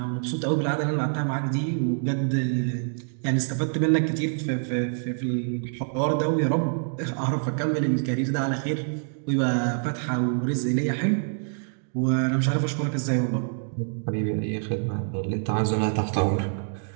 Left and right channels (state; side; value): silent; left; 61 dB below the other